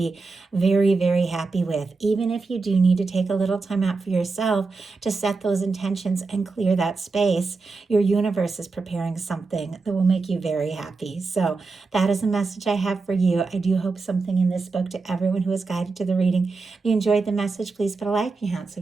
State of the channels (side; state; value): left; quieter; 4.0 dB